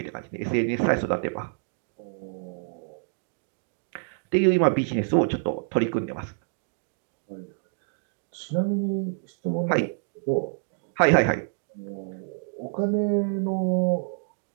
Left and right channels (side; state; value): left; silent; digital silence